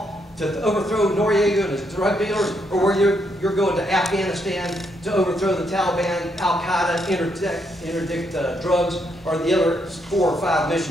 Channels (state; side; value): normal; both; correlation 0.76